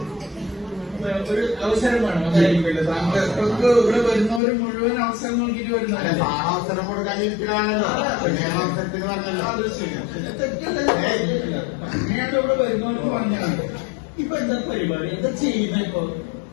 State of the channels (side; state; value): right; drops out; at 4.4 s